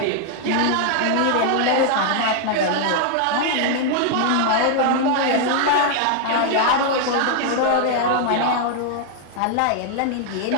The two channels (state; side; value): different; both; correlation 0.00